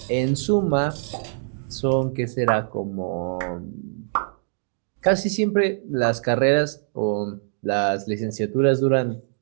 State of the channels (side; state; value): left; silent; digital silence